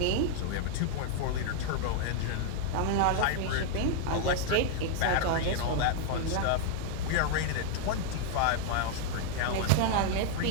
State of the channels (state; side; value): different; both; correlation 0.00